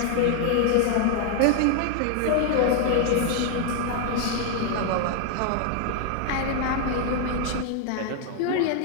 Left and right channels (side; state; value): both; different; correlation 0.00